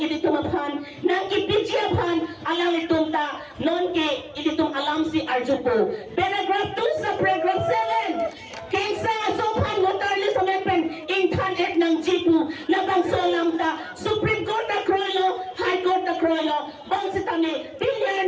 ini tumaphan. Nang ipidyapan, alang itong ta, non ke, ini tum alam si Arjupo. Paragraph 2 sa paragraph 7. Kaysa asophan, waterless amendment, intan et ng G po, labang solam ta, Supreme Court na Kroilo, High Court na Kroilo, bang si tami,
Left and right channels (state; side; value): identical; both; correlation 1.00